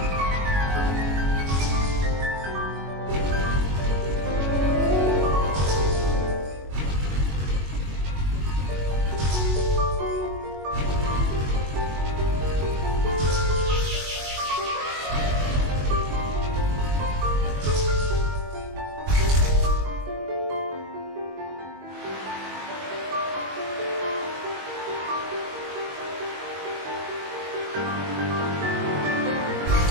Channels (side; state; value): left; late; 22 ms